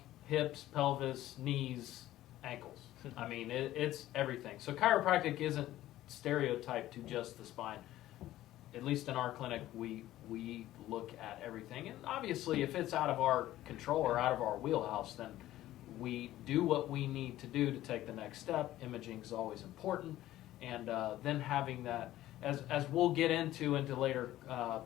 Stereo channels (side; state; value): right; quieter; 14.6 dB